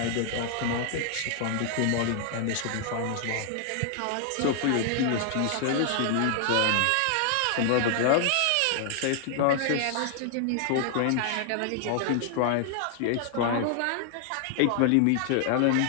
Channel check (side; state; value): both; different; correlation 0.00